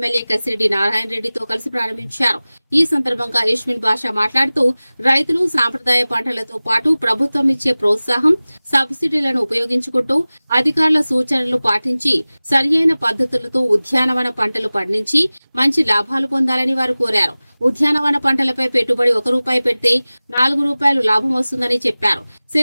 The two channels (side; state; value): both; inverted; correlation -0.98